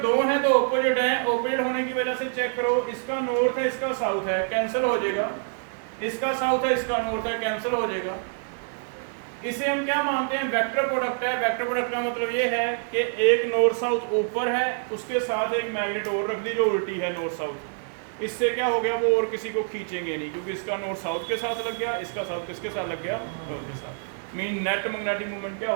हैं तो ऑपोजिट हैं, ऑपोजिट होने की वजह से चेक करो, इसका नॉर्थ है इसका साउथ है, कैंसिल हो जाएगा। इसका साउथ है इसका नॉर्थ है, कैंसिल हो जाएगा। इसे हम क्या मानते हैं? वेक्टर प्रोडक्ट है। वेक्टर प्रोडक्ट का मतलब ये है कि एक नॉर्थ साउथ ऊपर है, उसके साथ एक मैग्नेट और रख दी जो उल्टी है नॉर्थ साउथ। इससे क्या हो गया? वो और किसी को खींचेंगे नहीं, क्योंकि इसका नॉर्थ साउथ के साथ लग गया, इसका साउथ किसके साथ लग गया? नॉर्थ के साथ। मीन नेट मैग्नेटिक मूवमेंट क्या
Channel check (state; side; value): silent; left; digital silence